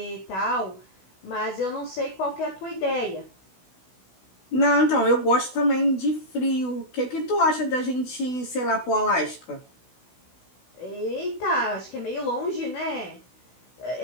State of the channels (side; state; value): right; late; 16 ms